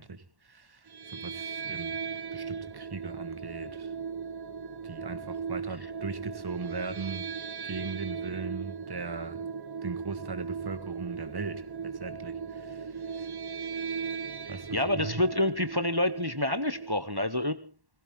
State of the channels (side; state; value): left; late; 1.1 ms